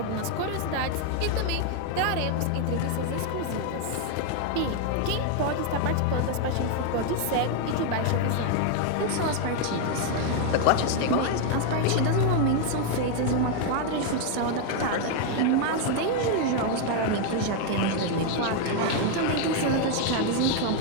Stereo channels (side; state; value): both; different; correlation 0.00